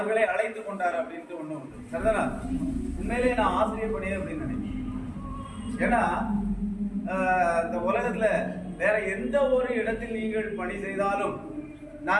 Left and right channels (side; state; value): both; identical; correlation 1.00